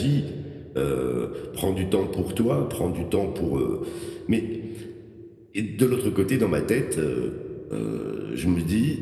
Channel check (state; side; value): identical; both; correlation 1.00